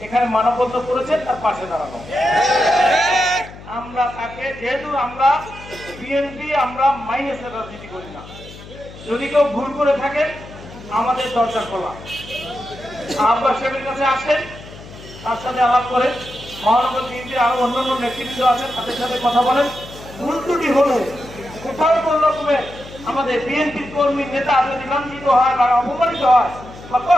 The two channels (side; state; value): left; noise; hum, 17 dB below the sound